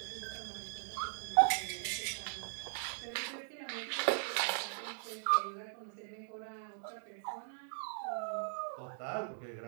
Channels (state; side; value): silent; left; digital silence